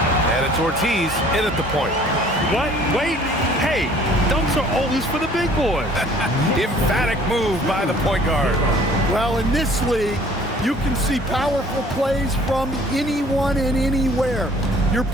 And it's Ortiz in at the point. What? Wait. Hey, dunks are always for the big boys. Emphatic move by the point guard. Well, in this league, you can see powerful plays from anyone and anywhere. Your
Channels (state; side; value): normal; both; correlation 0.54